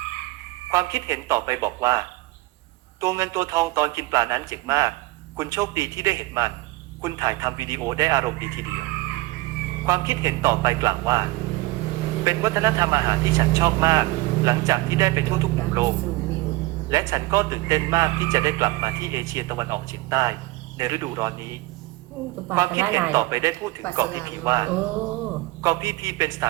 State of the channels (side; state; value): left; quieter; 20.5 dB